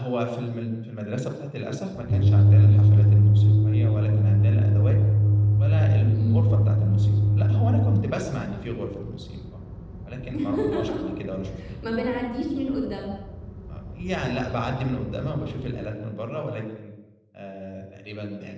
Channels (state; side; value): identical; both; correlation 1.00